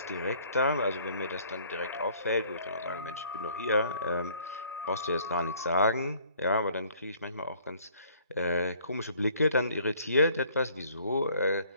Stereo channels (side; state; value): both; inverted; correlation -0.58